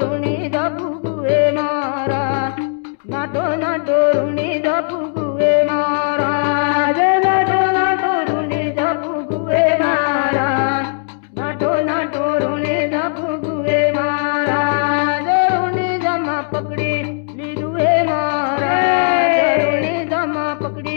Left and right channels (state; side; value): silent; right; 68 dB below the other